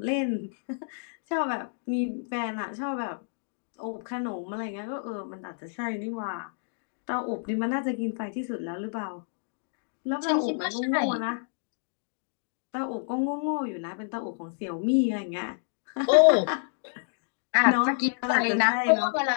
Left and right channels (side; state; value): right; silent; digital silence